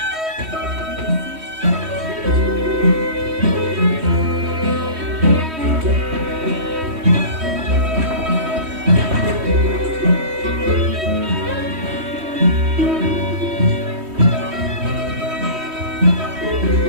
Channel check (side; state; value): left; late; 3.1 ms